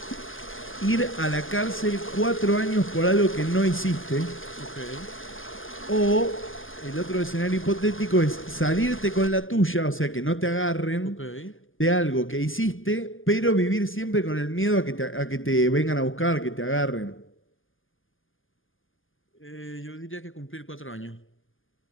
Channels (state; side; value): late; right; 0.58 ms